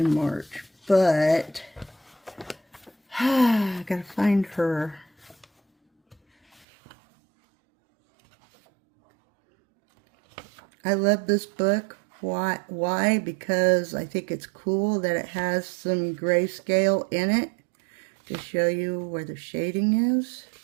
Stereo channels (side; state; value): left; drops out; at 6.7 s